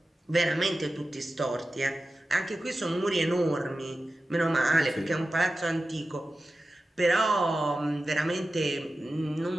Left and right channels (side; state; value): both; normal; correlation 0.94